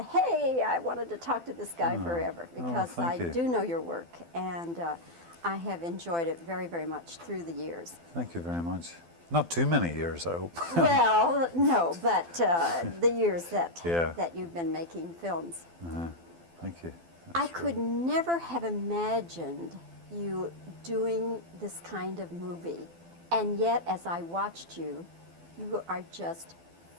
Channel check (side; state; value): left; late; 12 ms